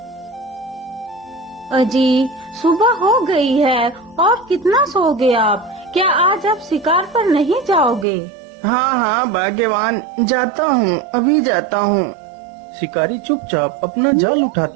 अजी, सुबह हो गई है और कितना सोओगे आप? क्या आज आप शिकार पर नहीं जाओगे? हाँ हाँ भाग्यवान, जाता हूँ, अभी जाता हूँ। शिकारी चुपचाप अपना जाल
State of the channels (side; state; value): left; drops out; at 8.1 s